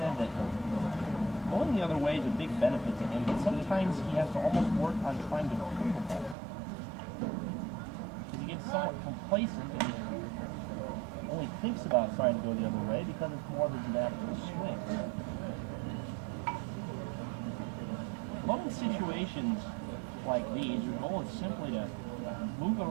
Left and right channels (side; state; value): left; drops out; at 6.4 s